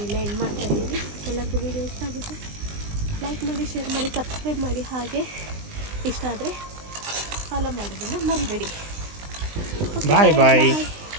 ಇಲ್ಲೇ ಎಂಡ್ ಮಾಡ್ತಾಯಿದ್ದೀನಿ. ಎಲ್ಲರಿಗೂ ವೀಡಿಯೋ ಇಷ್ಟ ಆಗುತ್ತೆ ಲೈಕ್ ಮಾಡಿ, ಶೇರ್ ಮಾಡಿ, ಸಬ್ಸ್ಕ್ರೈಬ್ ಮಾಡಿ. ಹಾಗೆ ಇಷ್ಟ ಆದರೆ ಫಾಲೋ ಮಾಡೋದನ್ನು ಮರಿಬೇಡಿ. ಬಾಯ್.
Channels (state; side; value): late; left; 20 ms